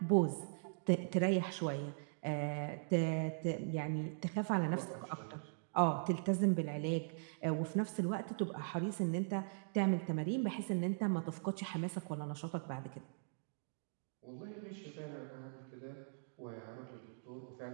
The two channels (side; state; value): left; silent; digital silence